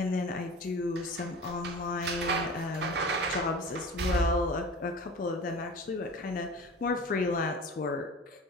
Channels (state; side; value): normal; both; correlation 0.36